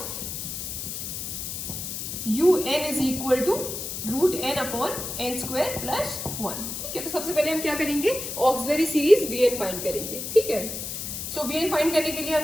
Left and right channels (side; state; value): left; noise; hiss, 6 dB below the sound